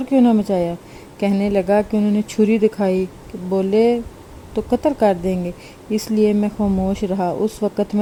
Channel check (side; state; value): both; identical; correlation 1.00